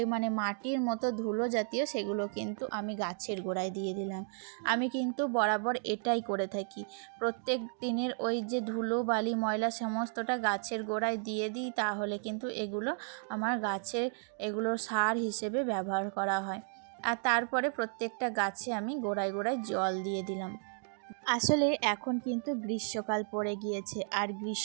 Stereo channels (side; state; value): left; silent; 55 dB below the other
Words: মাটির মতো ধুলো জাতীয় সেগুলো কিন্তু আমি গাছের গোড়ায় দিয়ে দিলাম। আমি কিন্তু বরাবর এটাই করে থাকি, প্রত্যেক দিনের ওই যে ধুলো বালি ময়লা সমস্তটা গাছের গোড়ায় দিয়ে দিই, তাহলে কিন্তু এগুলো আমার এগুলোর সার হিসেবে ব্যবহার করা হয়। আর তারপরে প্রত্যেকটা গাছে আমি গোড়ায় গোড়ায় জল দিয়ে দিলাম। আসলে এখন কিন্তু গ্রীষ্মকাল পড়ে গিয়েছে, আর